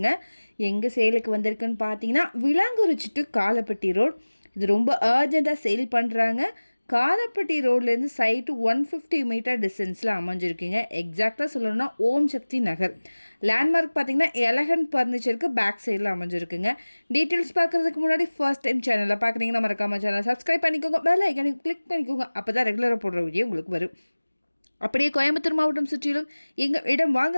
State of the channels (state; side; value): inverted; both; correlation -1.00